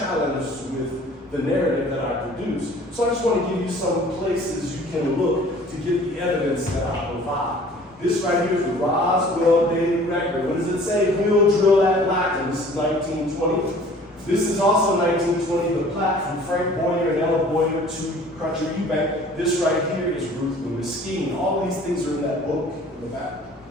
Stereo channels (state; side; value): normal; both; correlation 0.50